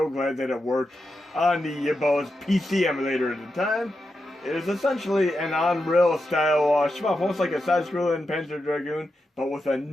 glad that it worked on the Yabo's PC emulator at the time. It is essentially an Unreal style shmup, almost like a side-scrolling Panzer Dragoon, but with a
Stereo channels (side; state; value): both; normal; correlation 0.88